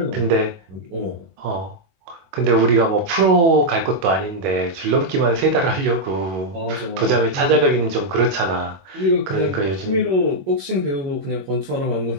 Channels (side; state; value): left; late; 21 ms